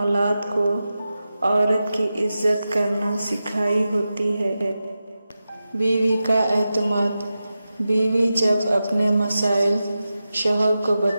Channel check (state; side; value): inverted; both; correlation -0.92